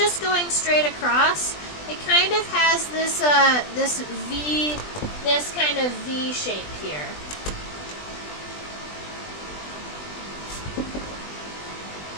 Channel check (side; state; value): right; late; 20 ms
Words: going straight across, it kind of has this kind of V shape here.